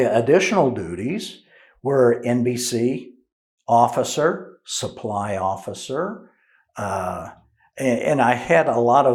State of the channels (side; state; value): both; identical; correlation 1.00